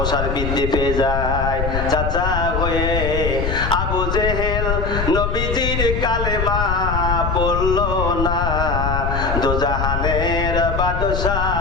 বৃদ্ধি পেয়ে যায়।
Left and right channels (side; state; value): left; noise; rumble, 2 dB below the sound